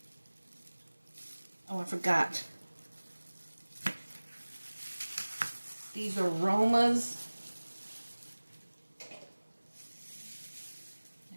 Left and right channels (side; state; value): both; inverted; correlation -1.00